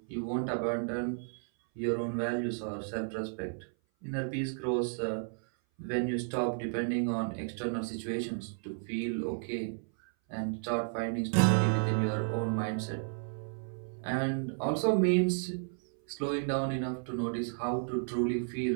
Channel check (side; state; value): left; silent; 56 dB below the other